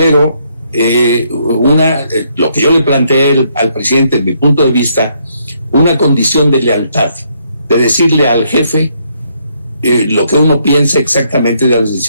lo que yo le planteé al presidente, desde mi punto de vista, una condición de lealtad, de decirle al jefe lo que uno piensa exactamente de las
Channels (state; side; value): inverted; both; correlation -0.72